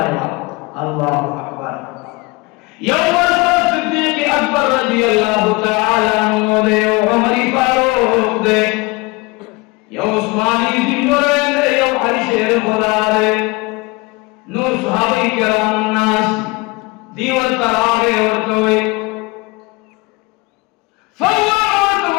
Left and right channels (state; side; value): quieter; right; 24.9 dB